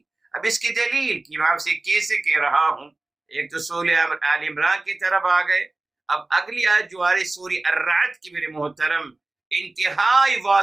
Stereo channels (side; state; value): left; quieter; 3.1 dB